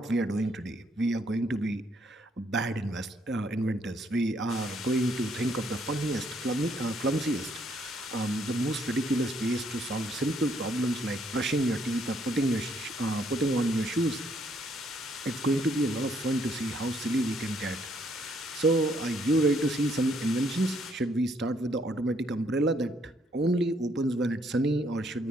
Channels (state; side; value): normal; both; correlation 0.69